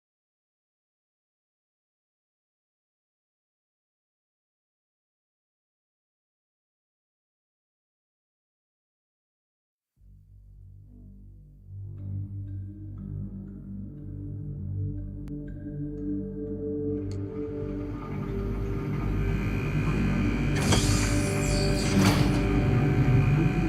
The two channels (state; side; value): identical; both; correlation 1.00